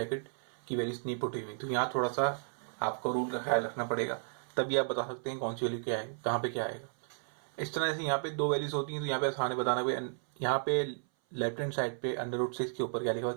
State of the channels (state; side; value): silent; left; 55 dB below the other